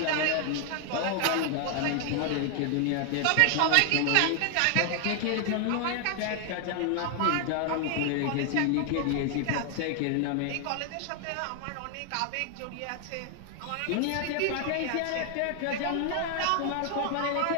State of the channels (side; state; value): both; different; correlation 0.00